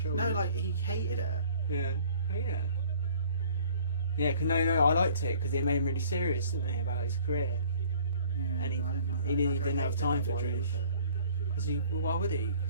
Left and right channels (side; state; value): both; inverted; correlation -0.52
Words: No, like he hated her. Yeah. Oh yeah. Yeah, cause no, I liked it because it made him really serious, didn't they, about his career. Yeah, and he didn't have time for Trish. Because why would he?